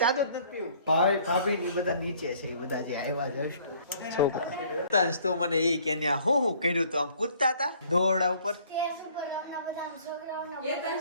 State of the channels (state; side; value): inverted; both; correlation -0.57